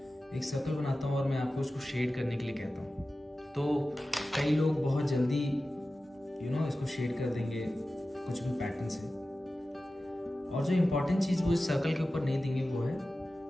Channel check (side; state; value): both; normal; correlation 0.95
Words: हूँ और मैं आपको उसको शेड करने के लिए कहता हूँ, तो कई लोग बहुत जल्दी इसको शेड कर देंगे कुछ भी पैटर्न से, और जो इम्पोर्टेंट चीज़ वो इस सर्कल के ऊपर नहीं देंगे वो है